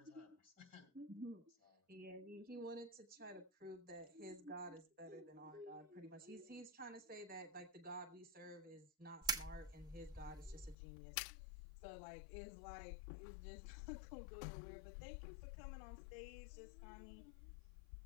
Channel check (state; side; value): drops out; right; at 10.8 s